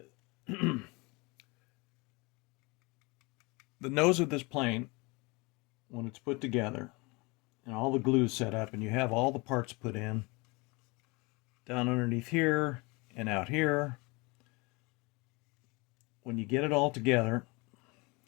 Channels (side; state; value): right; quieter; 26.7 dB